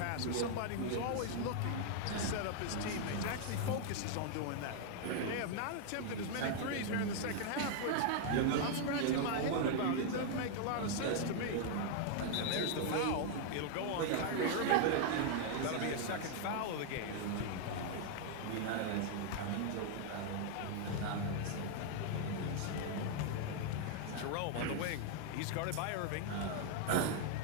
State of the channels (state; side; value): different; both; correlation 0.00